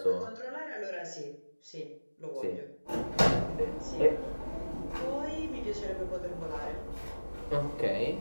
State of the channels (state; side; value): inverted; both; correlation -1.00